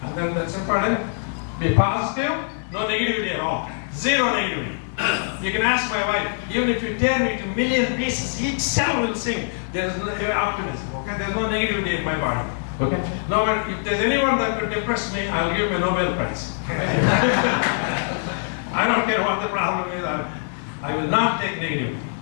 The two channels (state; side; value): silent; right; 63 dB below the other